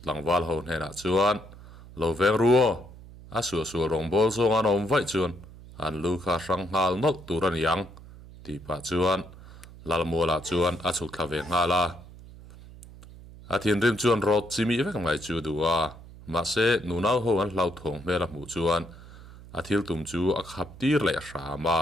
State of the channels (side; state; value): right; noise; hum, 18 dB below the sound